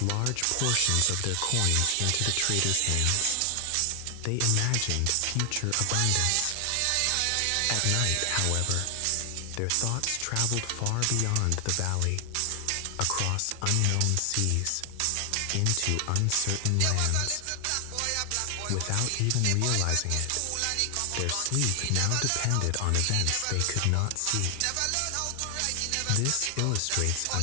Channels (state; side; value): different; both; correlation 0.00